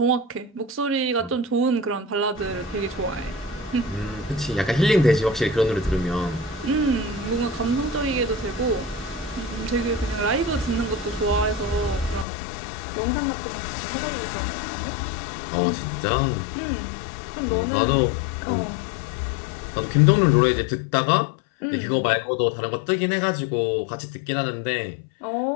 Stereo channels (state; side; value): drops out; right; at 12.2 s